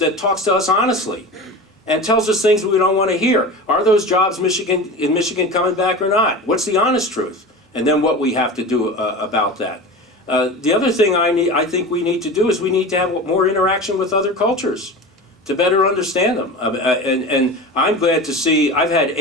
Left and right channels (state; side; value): normal; both; correlation 0.30